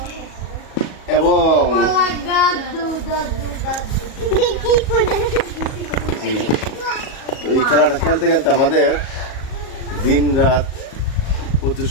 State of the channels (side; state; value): right; late; 37 ms